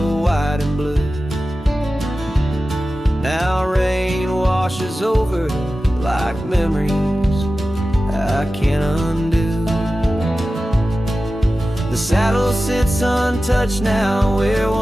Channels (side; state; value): both; normal; correlation 0.95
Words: white and blue. Now rain washes over like memories I can't undo. The saddle sits untouched now, where